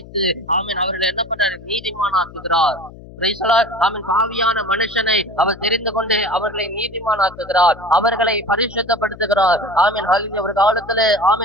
ஆமென் அவர்களை என்ன பண்றாரு? நீதிமானாக்குகிறார். Praise the Lord. ஆமென். பாவியான மனுஷனை அவர் தெரிந்து கொண்டு அவர்களை நீதிமானாக்குகிறார், அவர்களை பரிசுத்தப்படுத்துகிறார். ஆமென் ஹalleluya. ஒரு காலத்துல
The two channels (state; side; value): noise; left; hum, 18 dB below the sound